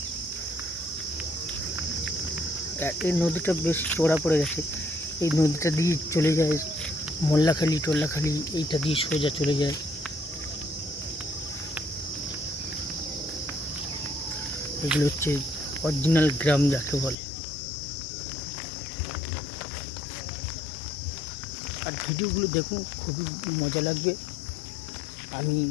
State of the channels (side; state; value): right; drops out; at 17.2 s